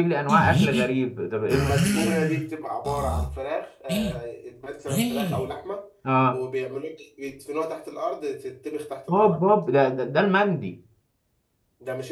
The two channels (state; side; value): identical; both; correlation 1.00